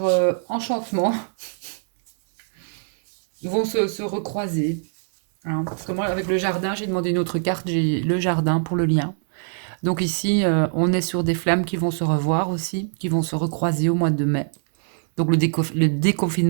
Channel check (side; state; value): left; silent; 64 dB below the other